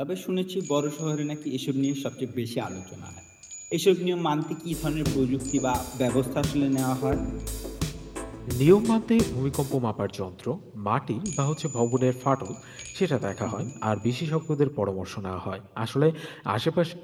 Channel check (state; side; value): identical; both; correlation 1.00